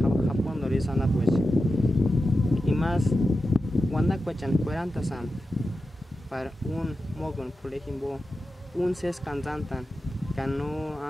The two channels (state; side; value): normal; both; correlation 0.91